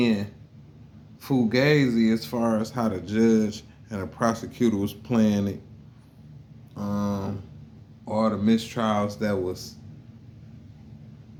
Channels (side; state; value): both; identical; correlation 1.00